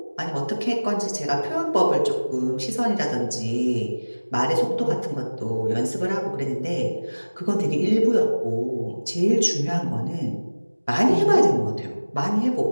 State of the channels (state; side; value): inverted; both; correlation -1.00